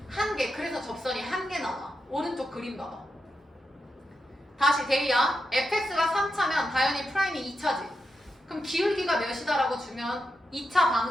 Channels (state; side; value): normal; both; correlation 0.87